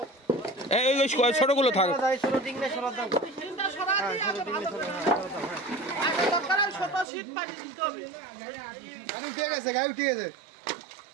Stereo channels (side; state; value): left; drops out; at 7.1 s